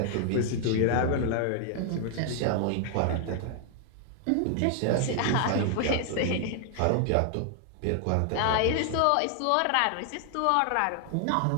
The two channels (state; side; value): different; both; correlation 0.00